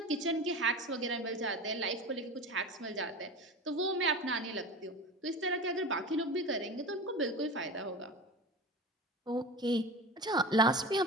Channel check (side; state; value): both; normal; correlation 0.30